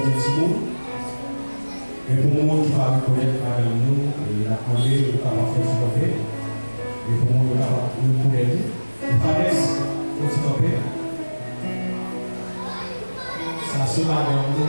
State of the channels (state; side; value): inverted; both; correlation -1.00